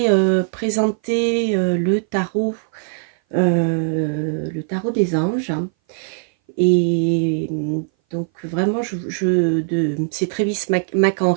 présenté le tarot des anges, et donc vraiment c'est Travis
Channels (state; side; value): silent; left; 59 dB below the other